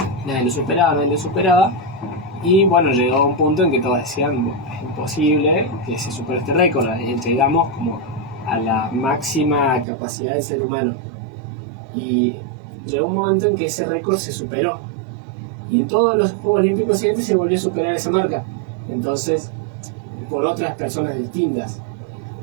Nadie lo superaba. Y bueno, llegó a un punto en que todos decían, es imposible que se supere este récord. Llegamos como a la máxima capacidad del ser humano. Y llegó un momento en que ese récord se superó. Y en todos los Juegos Olímpicos siguientes se volvió a superar esa marca. Entonces, por otras personas distintas.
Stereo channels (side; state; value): left; drops out; at 9.9 s